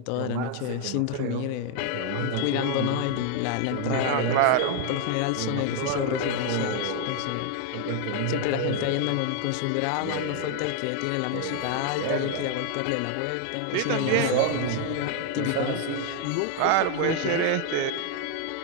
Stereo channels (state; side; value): different; both; correlation 0.00